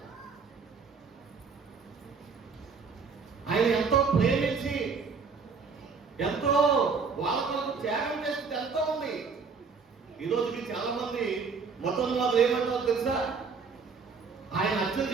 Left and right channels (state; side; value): quieter; left; 5.2 dB